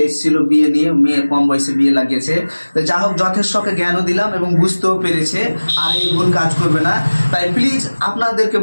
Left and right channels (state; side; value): inverted; both; correlation -1.00